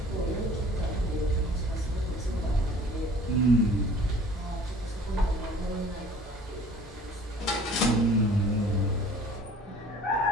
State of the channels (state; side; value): normal; both; correlation 0.50